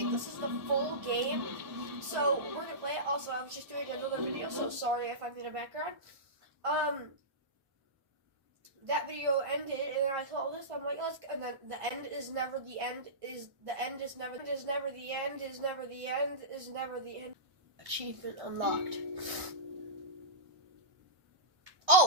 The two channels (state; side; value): late; left; 1.6 ms